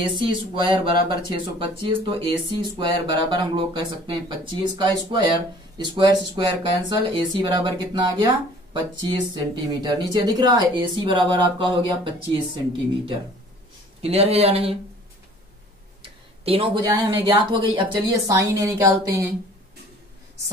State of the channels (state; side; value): normal; both; correlation 0.51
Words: स्क्वायर बराबर 625, तो AC स्क्वायर बराबर हम लोग कह सकते हैं 25 का स्क्वायर, स्क्वायर से स्क्वायर कैंसल, AC बराबर कितना आ गया 25 सेंटीमीटर। नीचे दिख रहा है AC बराबर आपका हो गया 25 सेंटीमीटर। क्लियर है या नहीं। तीनों भुजाएं हमें ज्ञात हो गई। अब चलिए साइन A निकालते हैं।